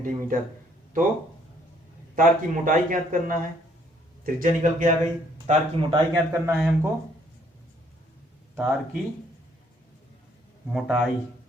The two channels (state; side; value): normal; both; correlation 0.65